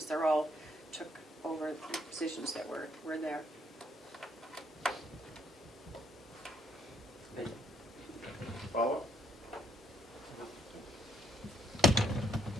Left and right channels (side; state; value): both; normal; correlation 0.71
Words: They're all took over the positions that were there. Follow-up?